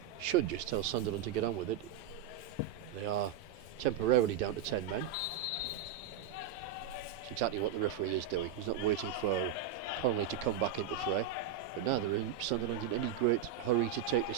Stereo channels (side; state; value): left; quieter; 8.1 dB